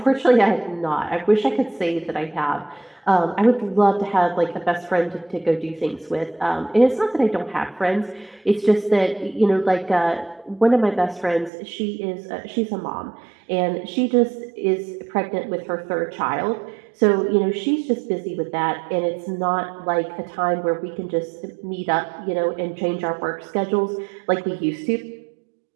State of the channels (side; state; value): left; drops out; at 11.5 s